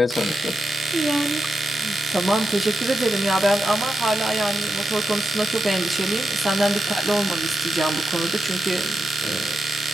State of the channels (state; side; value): normal; both; correlation 0.88